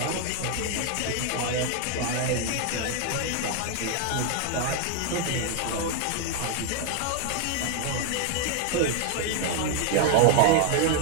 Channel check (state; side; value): different; both; correlation 0.00